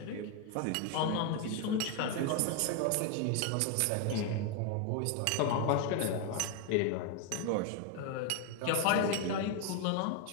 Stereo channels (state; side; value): different; both; correlation 0.01